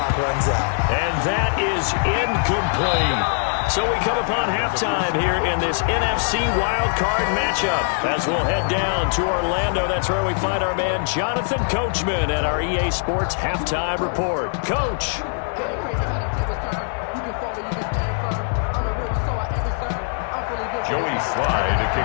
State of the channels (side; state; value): right; silent; 64 dB below the other